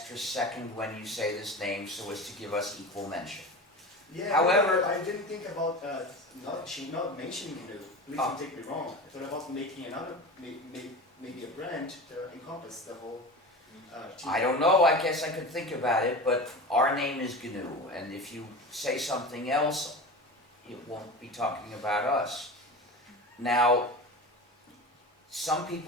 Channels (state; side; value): normal; both; correlation 0.30